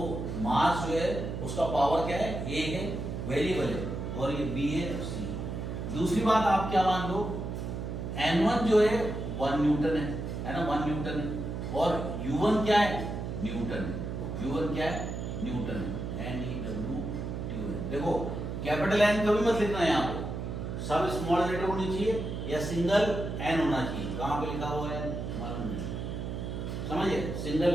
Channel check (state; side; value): noise; right; hum, 5 dB below the sound